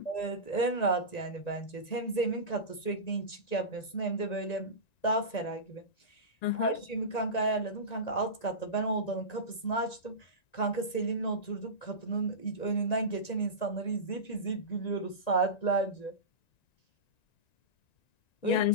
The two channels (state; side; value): late; right; 1.9 ms